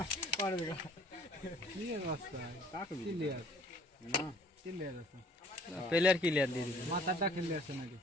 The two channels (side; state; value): both; normal; correlation 0.55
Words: প্লেয়ার ক্লিয়ার দিয়ে দিবি। মাথাটা খেলে আছে নাকি